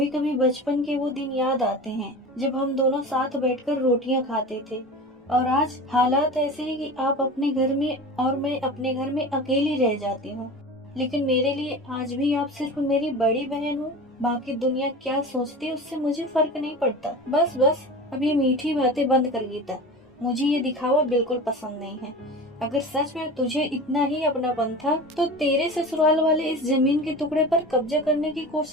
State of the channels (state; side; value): normal; both; correlation 0.33